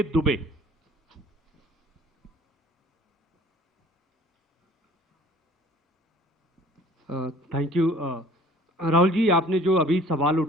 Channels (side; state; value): both; normal; correlation 0.52